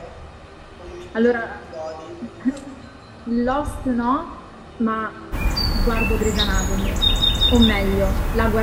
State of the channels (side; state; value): both; identical; correlation 1.00